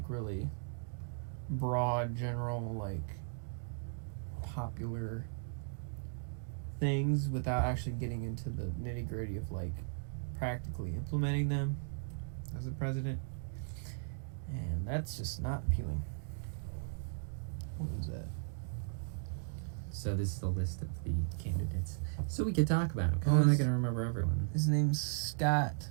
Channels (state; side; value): silent; left; digital silence